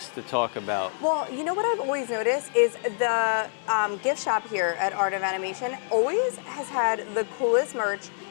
to talk about. Well, you know what I've always noticed is the gift shop here at Art of Animation always has had the coolest merch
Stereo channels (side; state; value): right; silent; digital silence